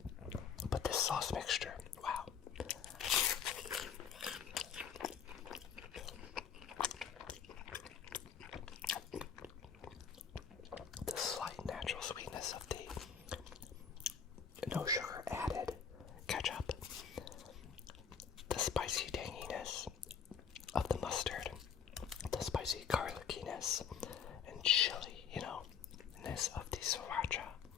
But this sauce mixture, wow. The slight natural sweetness of the no sugar added ketchup, the spicy tanginess of the mustard, the spicy garlickiness and chili, you know, ness of the sriracha,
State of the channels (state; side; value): quieter; right; 7.3 dB